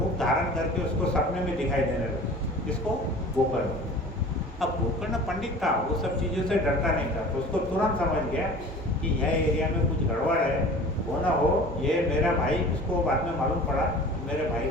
धारण करके उसको सपने में दिखाई देने लगे। इसको गोकर्ण। अब गोकर्ण पंडित था, वो सब चीज़ों से डरता नहीं था, तो उसको तुरंत समझ गया कि यह एरिया में कुछ गड़बड़ है, वो ना हो ये मेरा भाई। उसको बाद में मालूम पड़ा मेरे भाई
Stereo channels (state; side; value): normal; both; correlation 0.42